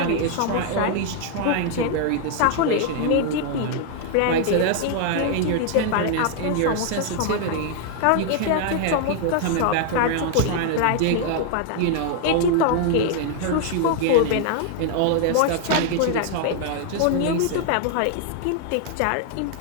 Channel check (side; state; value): both; different; correlation 0.00